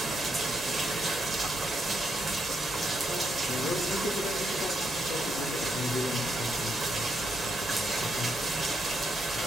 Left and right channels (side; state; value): both; normal; correlation 0.79